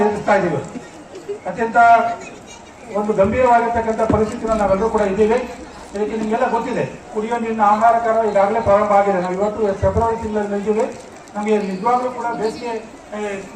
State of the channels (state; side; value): identical; both; correlation 1.00